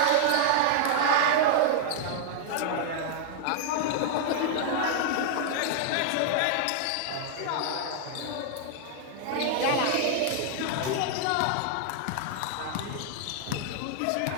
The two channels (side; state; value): both; different; correlation 0.00